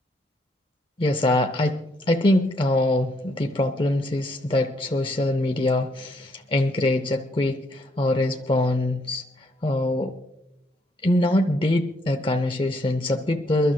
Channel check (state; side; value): normal; both; correlation 0.71